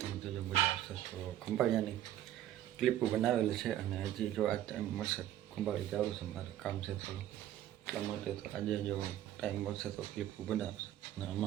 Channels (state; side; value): quieter; left; 12.4 dB